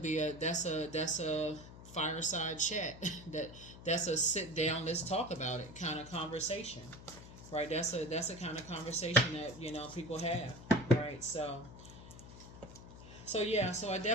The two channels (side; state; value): left; noise; hum, 16 dB below the sound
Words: be that's a fireside chat. that's a sit down, let's talk about it kind of conversation, right? That's a kind of conversation that people have, right? So So yeah, so I